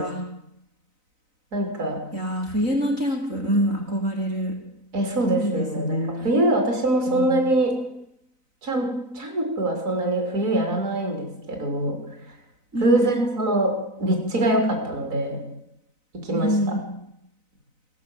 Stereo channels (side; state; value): left; late; 4.0 ms